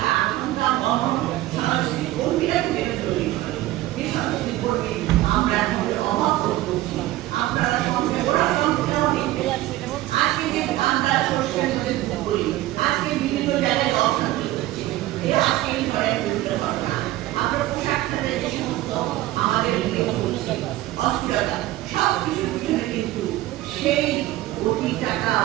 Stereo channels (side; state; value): left; quieter; 16.0 dB